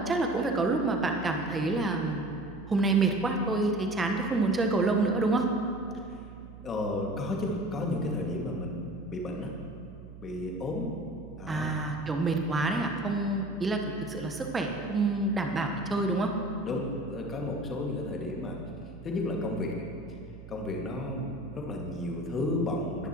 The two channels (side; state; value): right; noise; hum, 16 dB below the sound